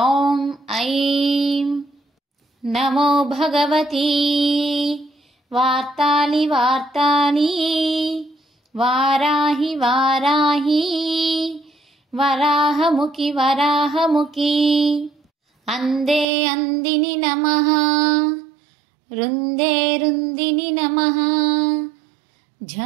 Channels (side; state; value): left; drops out; at 16.2 s